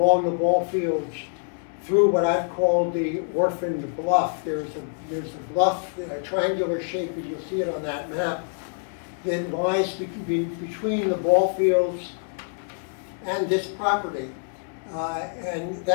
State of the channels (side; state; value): right; silent; 61 dB below the other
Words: the ball fields through what I've called the orphaned bluff. There's a bluff, a triangular shape, as you'll see it on that map, that lies between the ball fields and this property. And